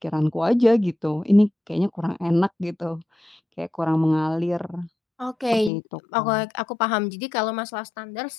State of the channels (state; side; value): drops out; right; at 5.7 s